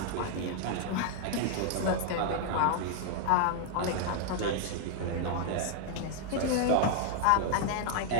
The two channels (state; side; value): different; both; correlation 0.00